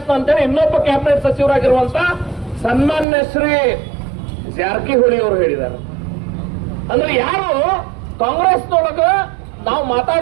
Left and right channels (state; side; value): drops out; left; at 3.1 s